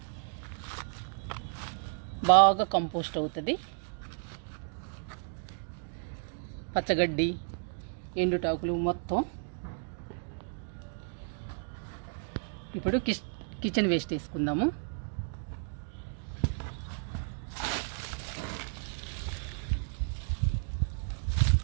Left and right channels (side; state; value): left; silent; 56 dB below the other